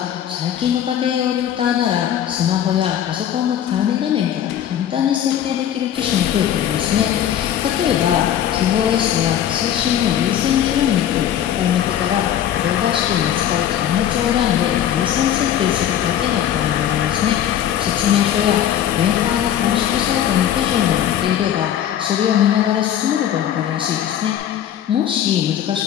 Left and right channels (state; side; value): quieter; right; 10.5 dB